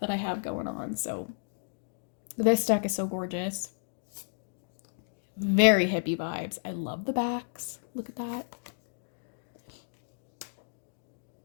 I have going on. So this deck is so gorgeous. Very hippie vibes. I love the backs. Look at that.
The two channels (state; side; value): silent; right; digital silence